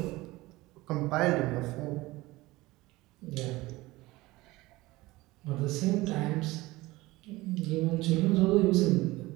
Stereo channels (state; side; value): quieter; left; 19.9 dB